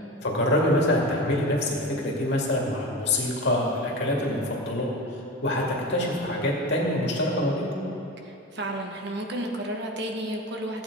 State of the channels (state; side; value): normal; both; correlation 0.28